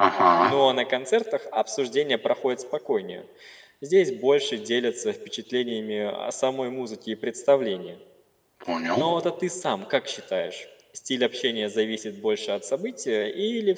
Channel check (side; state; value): both; identical; correlation 1.00